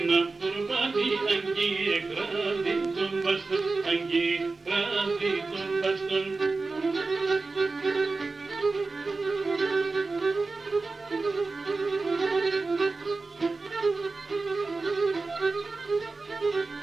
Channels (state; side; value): quieter; left; 3.8 dB